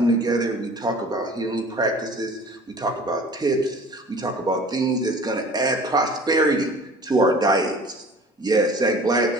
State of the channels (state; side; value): normal; both; correlation 0.45